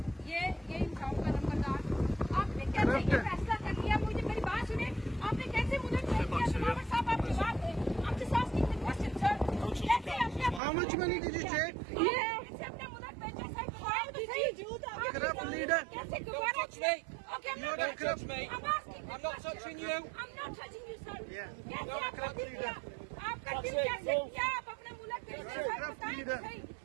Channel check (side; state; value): left; drops out; at 10.6 s